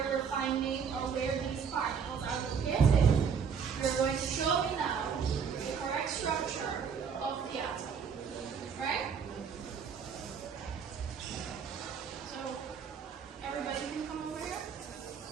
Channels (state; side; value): quieter; left; 6.6 dB